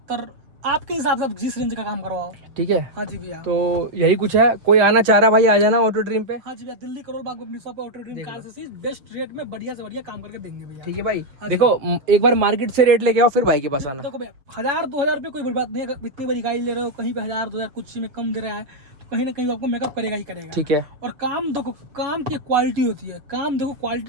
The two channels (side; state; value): left; late; 6.9 ms